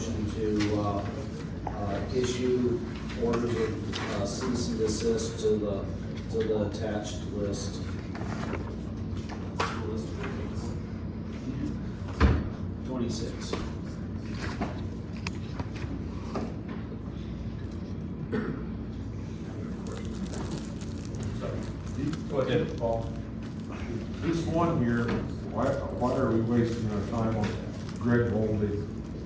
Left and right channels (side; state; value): both; identical; correlation 1.00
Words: to issue orders of cease and desist to the attached list. 26. Go ahead, Paul. This one here, why are we wasting our time on Greg Moldy?